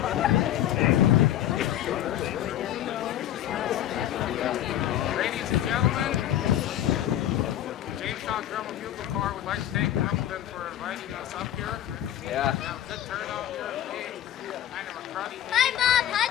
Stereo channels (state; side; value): quieter; right; 12.0 dB